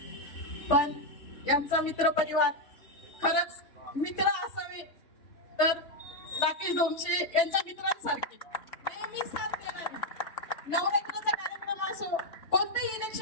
पण यांचा मित्र परिवार, खरंच मित्र असावे तर राकेश ढोमसे यांच्या मित्रांसारखे नेहमी साथ देणारे. नवरात्राचा कार्यक्रम असो, कोणतेही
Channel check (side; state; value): right; late; 3.4 ms